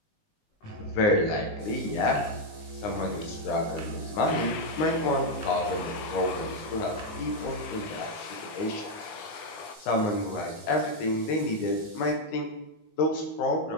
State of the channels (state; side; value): late; right; 19 ms